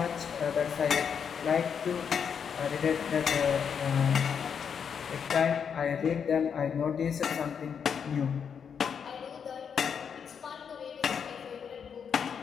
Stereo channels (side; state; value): right; quieter; 7.1 dB